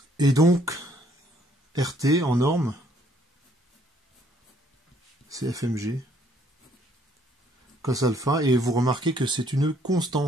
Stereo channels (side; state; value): both; normal; correlation 0.65